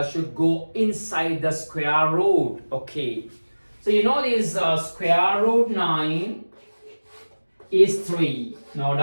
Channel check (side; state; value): both; inverted; correlation -1.00